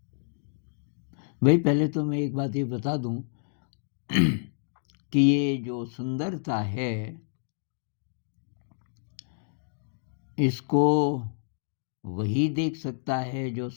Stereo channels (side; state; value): right; silent; digital silence